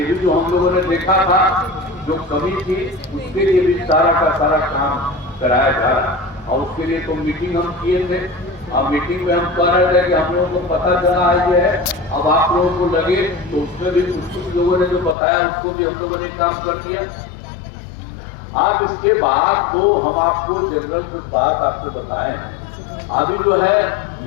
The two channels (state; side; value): drops out; right; at 15.2 s